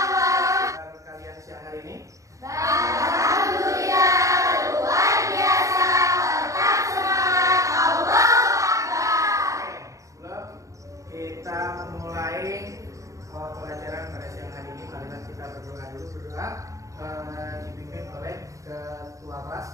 warahmatullahi wabarakatuh. Kalian siang hari ini? Alhamdulillah luar biasa. Tetap semangat. Allahu Akbar. Sebelum kita memulai pelajaran pada siang hari ini, marilah kita berdoa dulu. Berdoa dipimpin oleh ketua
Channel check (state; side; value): late; left; 0.16 ms